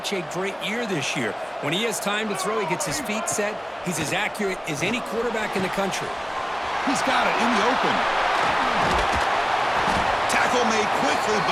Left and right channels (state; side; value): identical; both; correlation 1.00